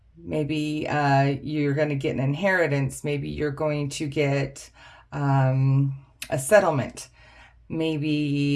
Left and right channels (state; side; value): identical; both; correlation 1.00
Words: Maybe you're going to get an inheritance. Maybe you're going to get a settlement.